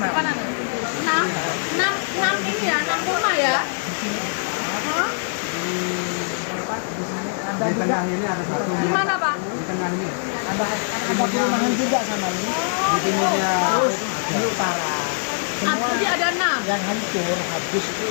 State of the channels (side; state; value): right; silent; 63 dB below the other